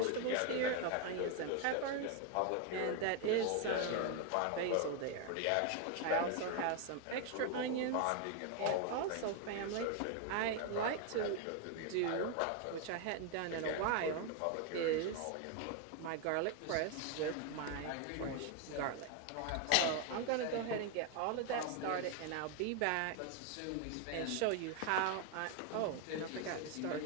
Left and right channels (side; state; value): both; different; correlation 0.01